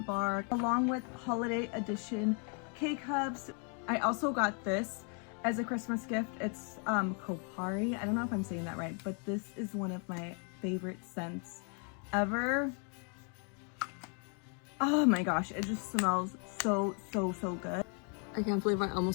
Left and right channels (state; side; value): quieter; right; 39.4 dB